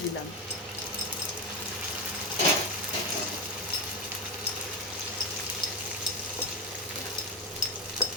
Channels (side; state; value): both; normal; correlation 0.14